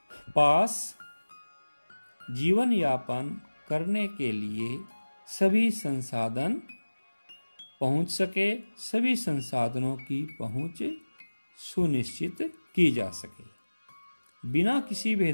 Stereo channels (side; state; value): both; inverted; correlation -1.00